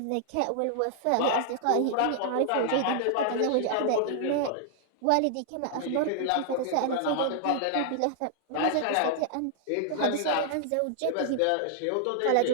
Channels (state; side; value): different; both; correlation -0.01